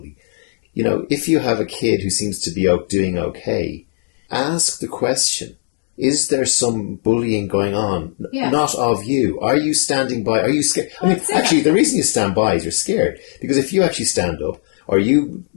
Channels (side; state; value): right; silent; digital silence